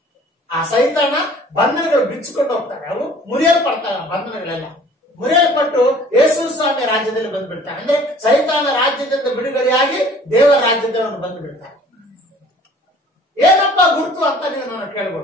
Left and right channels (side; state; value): both; normal; correlation 0.51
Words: ಆ ಸೈತಾನ ಬಂಧನಗಳು ಬಿಚ್ಚಿಕೊಂಡು ಹೋಗ್ತಾರೆ, ಅವು ಮುರಿಯಲ್ಪಡ್ತವೆ. ಬಂಧನಗಳೆಲ್ಲ ಮುರಿಯಲ್ಪಟ್ಟು ಯೇಸು ಸ್ವಾಮಿ ರಾಜ್ಯದಲ್ಲಿ ಬಂದ್ಬಿಡ್ತಾರೆ. ಅಂದ್ರೆ ಸೈತಾನ ರಾಜ್ಯದಿಂದ ಬಿಡುಗಡೆಯಾಗಿ ದೇವರ ರಾಜ್ಯದಲ್ಲಿ ಬಂದು ಬಿಡ್ತಾರೆ. ಏನಪ್ಪ ಗುರುತು ಅಂತ ನೀವು ನಾನು